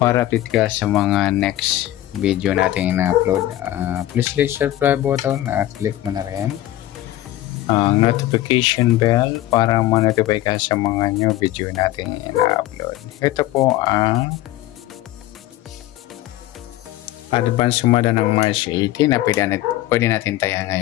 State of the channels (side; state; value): right; quieter; 14.9 dB